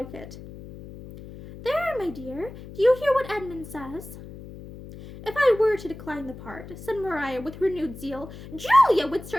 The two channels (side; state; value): left; noise; hum, 14 dB below the sound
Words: it. There, my dear, do you hear what Edmund says? If I were to decline the part, said Maria with renewed zeal, Julia would